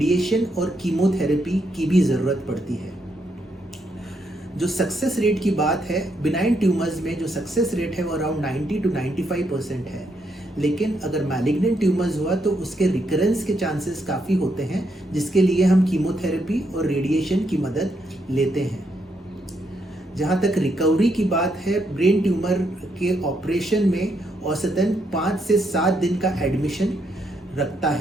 और कीमोथेरेपी की भी ज़रूरत पड़ती है। जो सक्सेस रेट की बात है, बिनाइन ट्यूमर्स में जो सक्सेस रेट है वो अराउंड 90 to 95% है, लेकिन अगर मैलिग्नेंट ट्यूमर्स हुआ तो उसके रिकरेंस के चांसेस काफ़ी होते हैं, जिसके लिए हम कीमोथेरेपी और रेडिएशन की मदद लेते हैं। जहाँ तक रिकवरी की बात है, ब्रेन ट्यूमर के ऑपरेशन में औसतन 5 से 7 दिन का एडमिशन रखता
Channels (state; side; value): normal; both; correlation 0.77